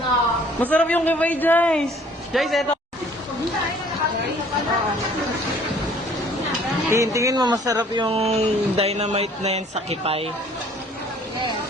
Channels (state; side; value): normal; both; correlation 0.56